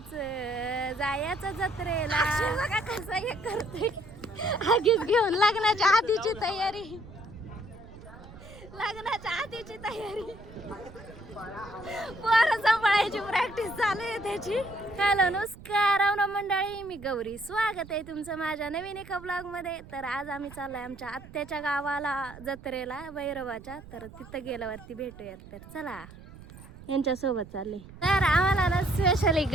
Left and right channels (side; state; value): right; noise; rumble, 18 dB below the sound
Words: जत्रेला बघा कसं हे करते आगीच घेऊन लग्नाच्या आधीची तयारी पोरं सांभाळायची प्रॅक्टिस चालू आहे त्याची. हॅलो नमस्कार रावणा मंडळी, मी गौरी. स्वागत आहे तुमचं माझ्या नवीन एका ब्लॉग मध्ये. तर आज आम्ही चाललोय आमच्या आत्याच्या गावाला जत्रेला भैरवाच्या. तर तिथं गेल्यावरती भेटूयात. तर चला यांच्यासोबत चालले. तर आम्हाला ना स्पेशली